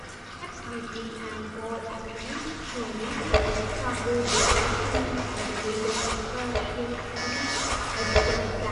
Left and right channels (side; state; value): both; identical; correlation 1.00